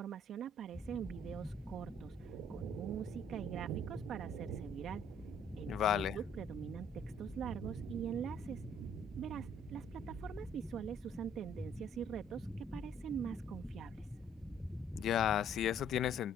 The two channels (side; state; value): both; normal; correlation 0.61